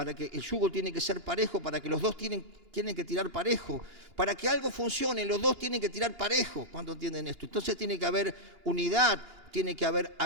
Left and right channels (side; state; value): left; late; 2.9 ms